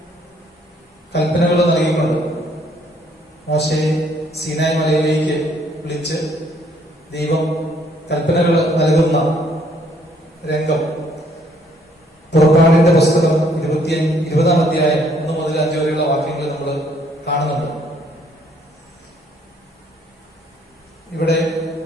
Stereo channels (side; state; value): both; normal; correlation 0.65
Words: കൽപ്പനകൾ നൽകിക്കൊണ്ട് മോശയെ സീനായ് മലയിലേക്ക് വിളിച്ച് ദൈവം കൽപ്പനകൾ നൽകുന്ന രംഗം പുറപ്പാടിന്റെ പുസ്തകം 20-ാം അധ്യായം 1 മുതൽ 5 വരെയുള്ള വാക്യങ്ങൾ നമ്മൾ കാണുന്നുണ്ട്. ഇവിടെ